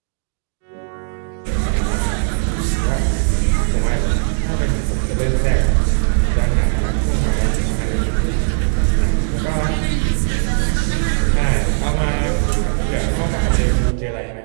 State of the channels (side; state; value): left; silent; digital silence